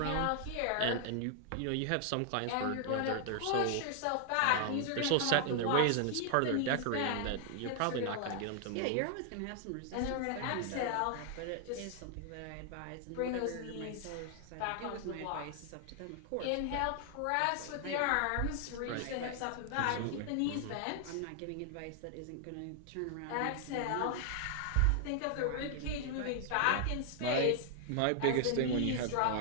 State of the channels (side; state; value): both; different; correlation 0.00